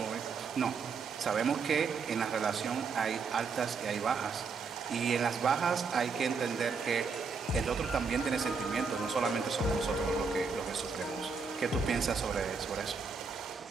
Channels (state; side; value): quieter; left; 5.0 dB